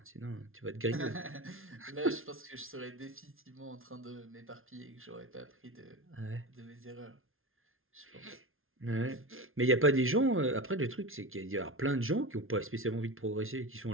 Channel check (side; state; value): left; late; 0.61 ms